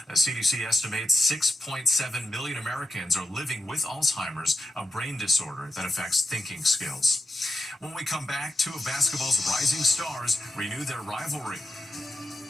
The CDC estimates 6.7 million Americans are living with Alzheimer's, a brain disorder that affects thinking skills. When we come back, 2 of basketball's rising stars renew their rivalry.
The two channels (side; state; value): both; normal; correlation 0.87